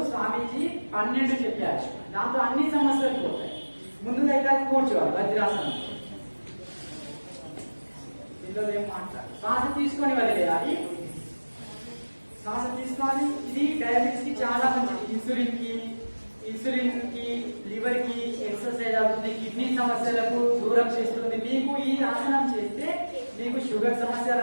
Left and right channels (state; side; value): inverted; both; correlation -1.00